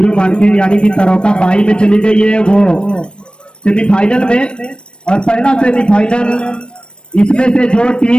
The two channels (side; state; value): right; late; 0.055 ms